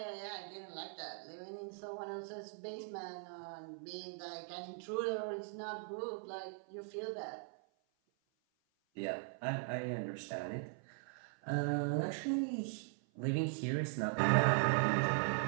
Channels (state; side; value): silent; left; 51 dB below the other